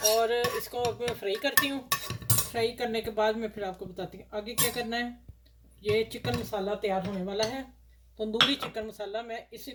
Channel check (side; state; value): both; identical; correlation 1.00